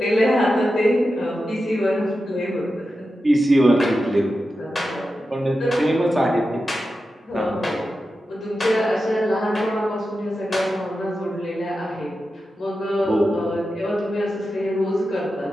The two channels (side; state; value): both; normal; correlation 0.91